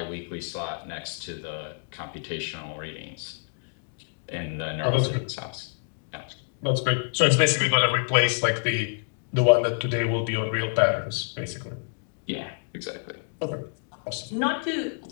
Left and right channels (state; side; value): silent; right; 58 dB below the other